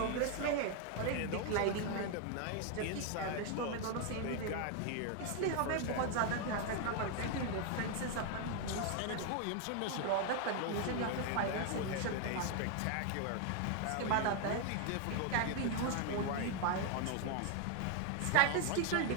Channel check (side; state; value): both; different; correlation 0.01